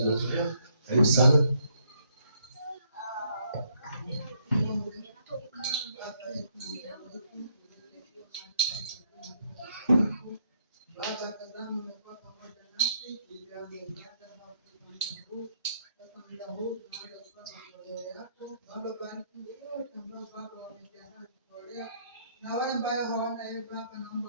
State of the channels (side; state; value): both; inverted; correlation -0.71